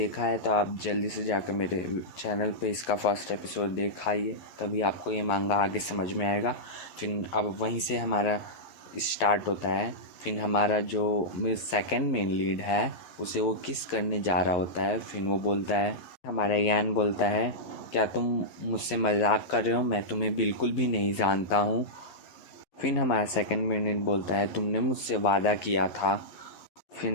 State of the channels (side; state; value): right; late; 11 ms